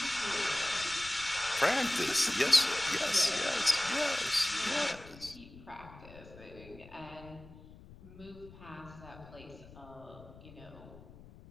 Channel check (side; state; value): left; noise; rumble, 19 dB below the sound